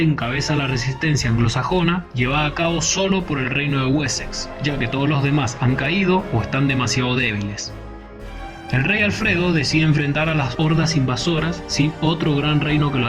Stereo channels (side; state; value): both; identical; correlation 1.00